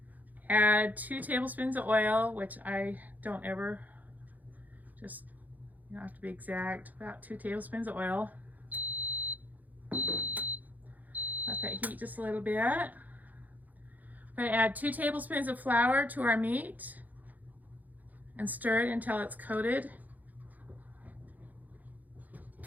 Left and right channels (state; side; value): late; left; 0.081 ms